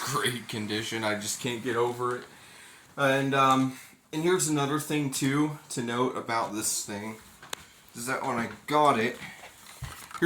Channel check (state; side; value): identical; both; correlation 1.00